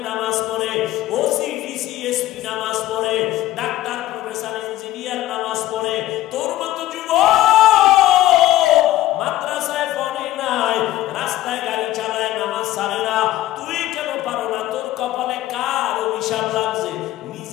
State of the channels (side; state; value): right; quieter; 15.0 dB